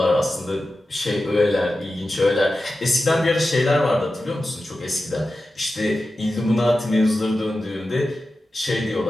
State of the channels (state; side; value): normal; both; correlation 0.93